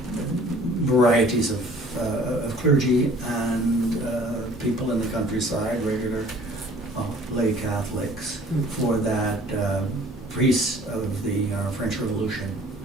varieties of clergy and people in the countryside, regular lay Catholics, for that priests of the French Revolution.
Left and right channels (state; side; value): normal; both; correlation 0.51